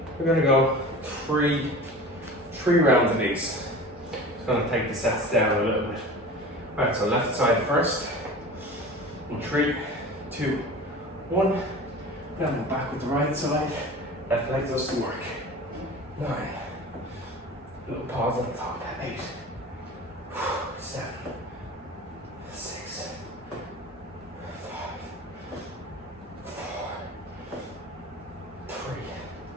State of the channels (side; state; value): both; normal; correlation 0.37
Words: we're going to go three rounds of these. Just going to take the sets down a little bit. Alright, so left side first. In 3, 2, 1. Then we're back with the right side. Left leg does some work. 9. Little pause at the top. 8, 7, 6, 5, 4, 3,